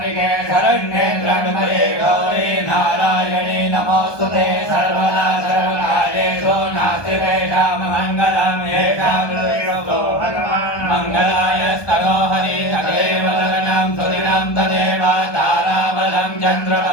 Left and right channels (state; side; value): late; right; 1.2 ms